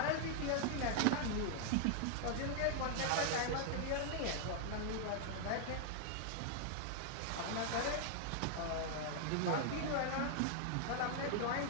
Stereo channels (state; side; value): different; both; correlation 0.00